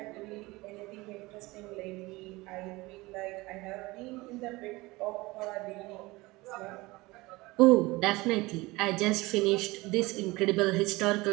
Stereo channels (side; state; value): left; quieter; 21.6 dB